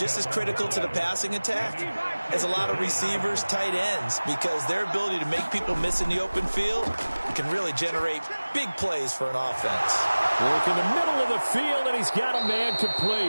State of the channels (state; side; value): inverted; both; correlation -1.00